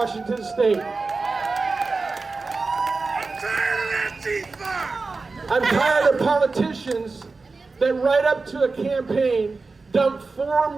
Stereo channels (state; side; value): quieter; left; 4.0 dB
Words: State. I'm tired of politicians that right up to a campaign dump